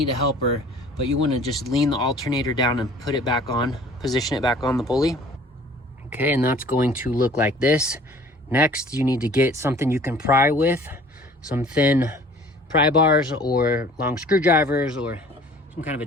a helper, but you want to just lean the alternator down and put it back on, position it back on the pulley. Okay, and that's going to look like this. Next, you need to get something you can pry with, some thin pry bars or long screwdrivers or some kind of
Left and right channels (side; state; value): both; normal; correlation 0.50